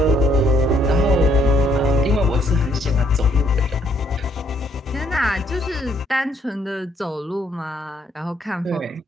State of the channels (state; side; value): normal; both; correlation 0.69